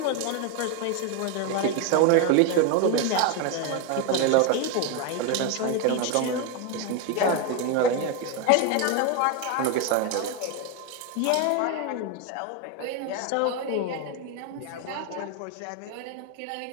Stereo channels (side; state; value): both; different; correlation 0.02